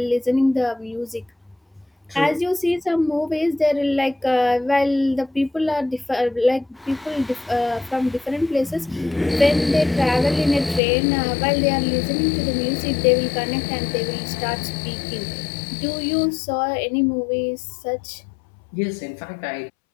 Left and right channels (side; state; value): right; drops out; at 10.8 s